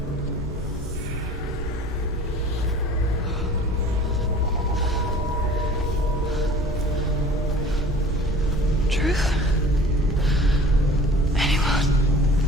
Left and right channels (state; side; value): normal; both; correlation 0.45